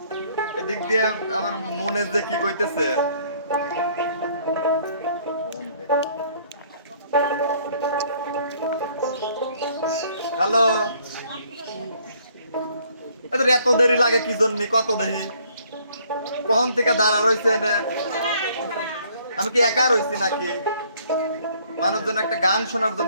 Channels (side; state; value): both; inverted; correlation -0.62